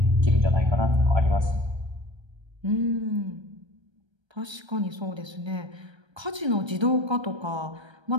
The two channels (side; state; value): left; late; 1.3 ms